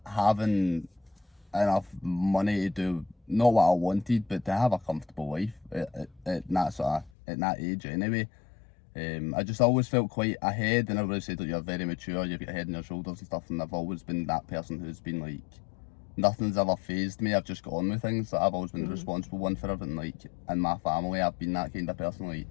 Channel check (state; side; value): drops out; right; at 7.1 s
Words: having enough money to do not what I wanted, but to have a comfortable life at that age anyway. I just always felt quite ahead, and everybody said that you're very mature, you've got a head on your shoulders and stuff, and I've always been that person who's been like, nothing's ever phased me. I've just got on with things. Like, I've always been the responsible one for everything. Like, in my family, I've been that kind of person. Like,